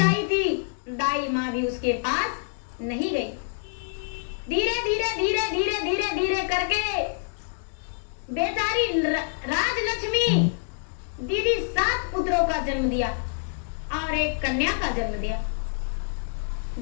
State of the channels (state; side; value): silent; right; digital silence